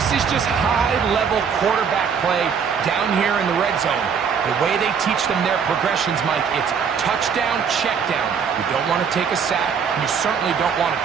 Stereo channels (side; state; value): left; quieter; 6.7 dB